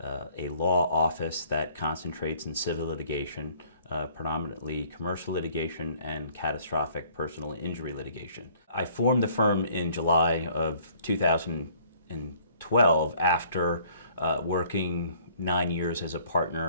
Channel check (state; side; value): inverted; both; correlation -0.58